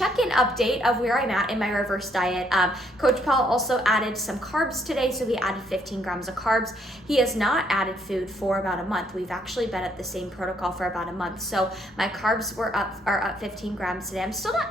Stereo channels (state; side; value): normal; both; correlation 0.70